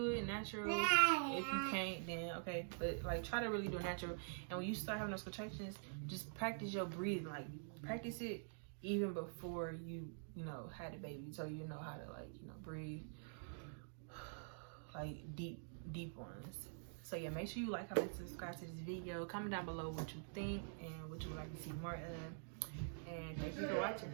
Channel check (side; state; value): left; silent; digital silence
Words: it natural. If you can't, then okay, but like try to really do it natural. And when you start having those contractions, just practice your breathing. Like practice it even before you had a baby, so you know how to, like, breathe like deep ones. So yeah, make sure you like, comment, subscribe to this video. Comment down below what you think and what you would like to see more of. And thank you for